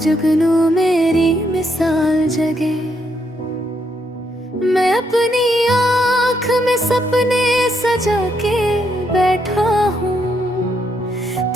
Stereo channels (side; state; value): both; normal; correlation 0.76